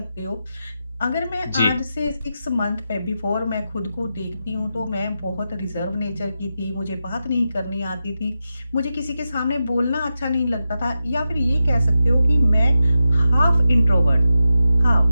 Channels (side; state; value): both; inverted; correlation -0.90